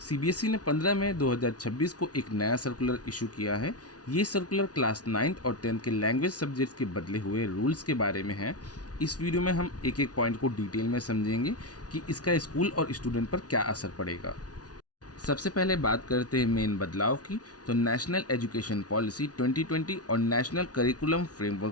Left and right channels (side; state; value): right; late; 0.68 ms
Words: ने 15 मई 2026 को एक नया सर्कुलर इशू किया है। ये सर्कुलर क्लास 9th और 10th के लैंग्वेज सब्जेक्ट्स के बदले हुए रूल्स के बारे में है। इस वीडियो में हम एक एक पॉइंट को डिटेल में समझेंगे कि इसका स्कूल और स्टूडेंट पर क्या असर पड़ेगा। सबसे पहले बात करते हैं मेन बदलाव की। तो नेशनल एजुकेशन पॉलिसी 2020 और national curriculum